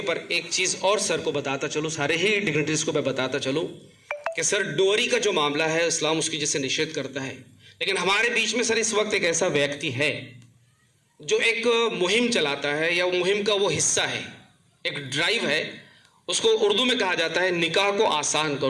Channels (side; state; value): both; identical; correlation 1.00